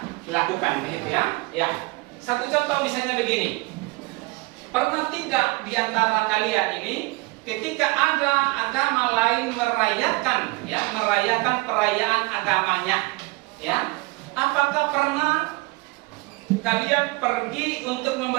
lakukan, begitu ya. Ya. Satu contoh misalnya begini. Pernah tidak di antara kalian ini ketika ada agama lain merayakan perayaan agamanya, ya? Apakah pernah kalian pergi untuk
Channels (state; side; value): quieter; left; 24.3 dB